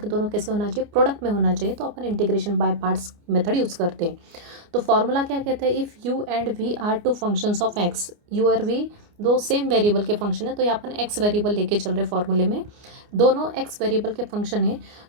दोनों कैसे होना चाहिए, प्रोडक्ट में होना चाहिए। तो अपन integration by parts method use करते हैं। तो फॉर्मूला क्या कहते हैं, if u and v are two functions of x, u और वी दो सेम वेरिएबल के फंक्शन है। तो ये अपन एक्स वेरिएबल लेके चल रहे फॉर्मूले में, दोनों एक्स वेरिएबल के फंक्शन है।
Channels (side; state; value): left; late; 29 ms